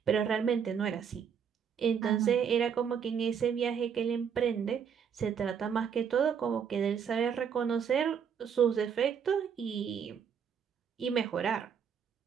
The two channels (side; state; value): left; quieter; 7.4 dB